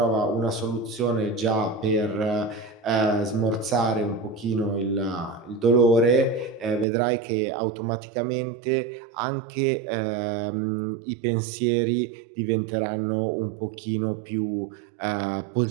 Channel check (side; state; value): left; drops out; at 6.9 s